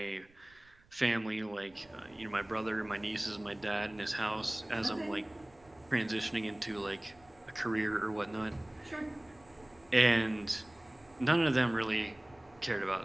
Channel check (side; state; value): right; noise; rumble, 29 dB below the sound